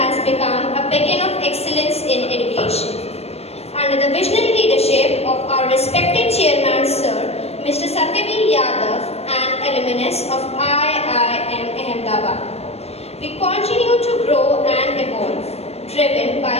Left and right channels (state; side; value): late; right; 0.30 ms